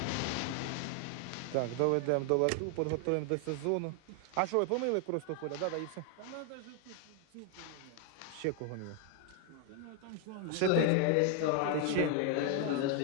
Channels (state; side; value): different; both; correlation 0.01